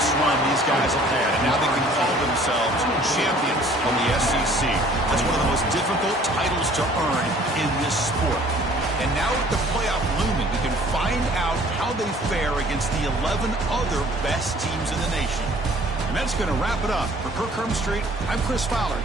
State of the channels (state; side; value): normal; both; correlation 0.54